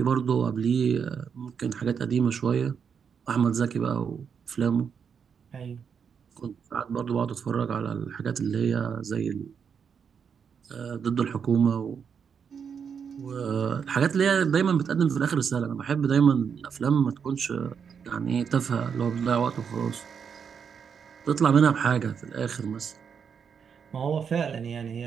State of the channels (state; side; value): quieter; left; 6.9 dB